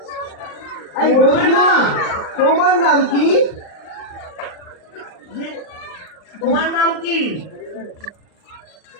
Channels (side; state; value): right; late; 39 ms